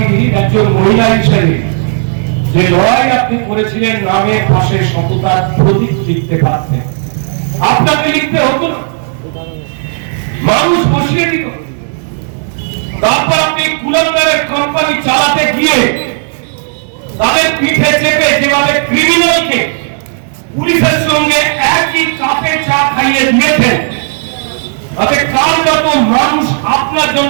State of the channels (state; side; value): silent; left; digital silence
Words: একজন মহিলা হিসেবে যে লড়াই আপনি করেছিলেন, নামের পাশে সততার প্রতীক লিখতে পারতেন। আপনাকে লিখতে হতো না, মানুষ বসিয়ে দিত। তারপর আপনি কুলাঙ্গারের কোম্পানি চালাতে গিয়ে তাদের পিঠে চেপে যেভাবে ক্রিমিনালকে পুলিশের সঙ্গে একই কাপে চা খাইয়ে দিয়েছেন, তাতে কার যত মানুষ আপনার